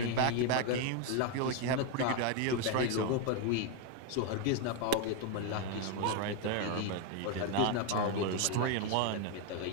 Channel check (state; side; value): different; both; correlation 0.01